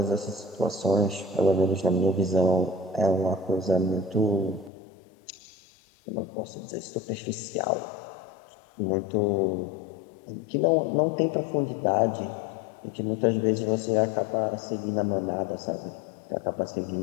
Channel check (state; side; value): drops out; right; at 4.7 s